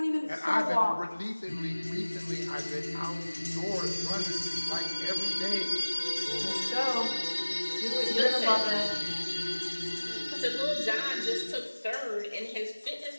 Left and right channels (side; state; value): both; inverted; correlation -1.00